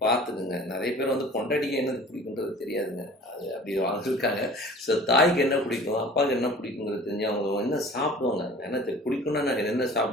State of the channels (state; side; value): normal; both; correlation 0.45